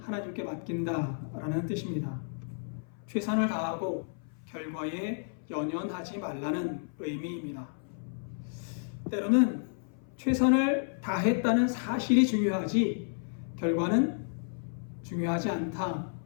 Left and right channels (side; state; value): right; silent; 56 dB below the other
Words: 맡긴다라는 뜻입니다. 최선을 다하고 결과에 연연하지 말라는 의미입니다. 때로는 최선을 다했다는 사실이 중요하지 결과는 중요하지 않다라고